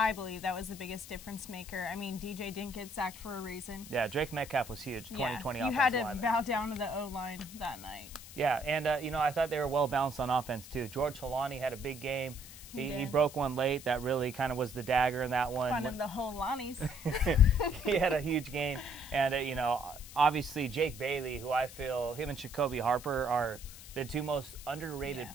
believe, that was the biggest difference maker. I mean, DJ didn't get sacked for a reason. Yeah, Drake Metcalf was huge, 2020 you offensive had to lineman. bow down to the O-line that night. Yeah, and, I thought they were well-balanced on offense, too. George Holani had a big game. He broke one late. That really kind of was the dagger in that one. Fun in the Holanis. He had a huge game. And, obviously Jake Bailey, who I feel him and Jacoby Harper are the two most underrated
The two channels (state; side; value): noise; left; hiss, 15 dB below the sound